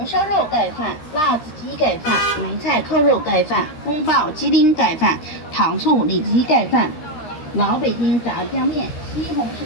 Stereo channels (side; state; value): right; late; 13 ms